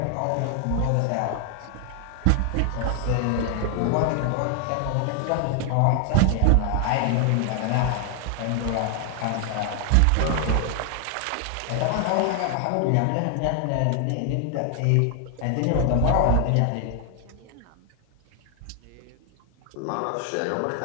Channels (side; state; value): both; different; correlation 0.00